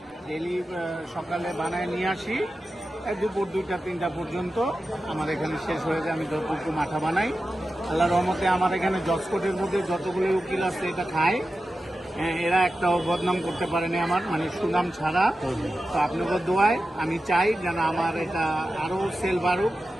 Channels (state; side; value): normal; both; correlation 0.92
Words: ডেলি সকালে বানায় নিয়ে আসি, দুপুর 2টা-3টা পর্যন্ত আমার এখানে শেষ হয়ে যায়। আমি যতটুকু মাঠা বানাই, আল্লাহ রহমতে আমার এখানে জজকোটের মধ্যে যতগুলো উকিল আছে এটা খায়, এরা একটাও বদনাম করতে পারেনি আমার, মানে সুনাম ছাড়া। তো আপনাদের দোয়ায় আমি চাই যেন আমার এটা আরো সেল বাড়ুক।